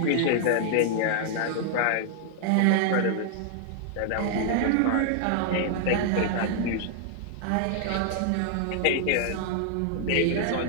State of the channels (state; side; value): different; both; correlation 0.00